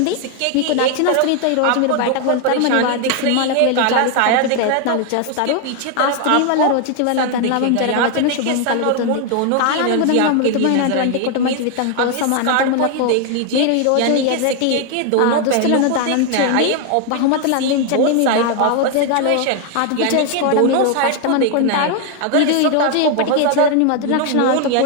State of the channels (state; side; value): different; both; correlation 0.01